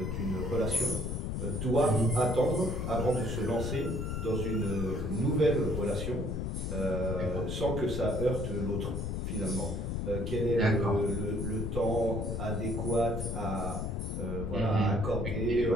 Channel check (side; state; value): left; noise; rumble, 2 dB below the sound